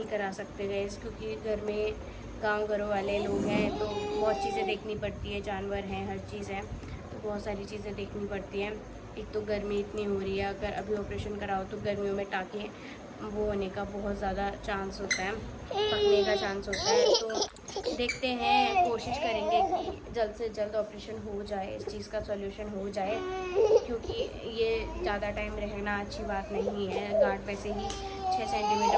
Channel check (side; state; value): both; identical; correlation 1.00